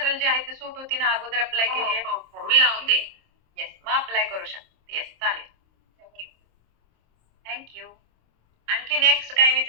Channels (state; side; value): late; left; 26 ms